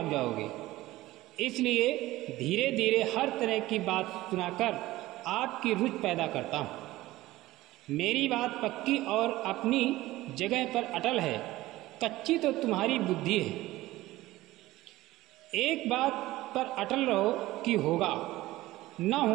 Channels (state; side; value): quieter; left; 17.3 dB